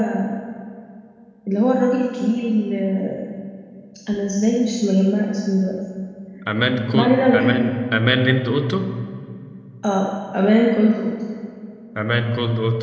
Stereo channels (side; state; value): both; identical; correlation 1.00